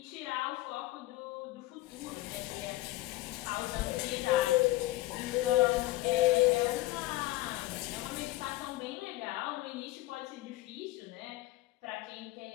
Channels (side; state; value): right; quieter; 18.0 dB